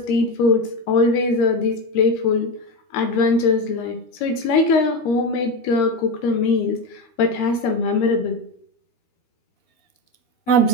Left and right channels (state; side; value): late; right; 13 ms